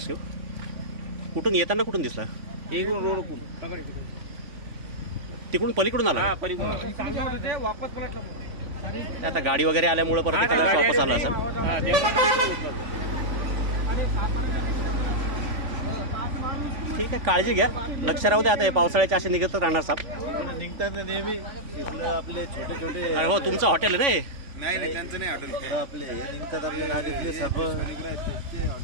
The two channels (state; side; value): late; left; 3.5 ms